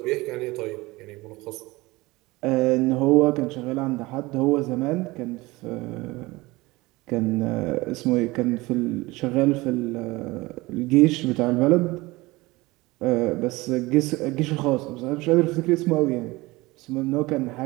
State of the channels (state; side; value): quieter; left; 21.3 dB